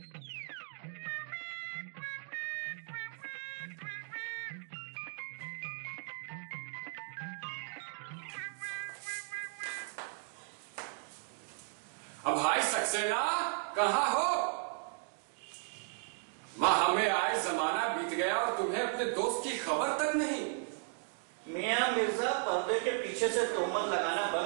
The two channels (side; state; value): left; silent; 54 dB below the other